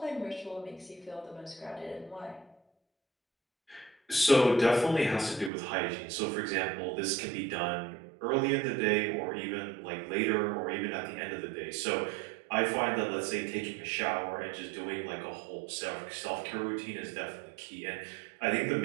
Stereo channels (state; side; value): drops out; left; at 5.5 s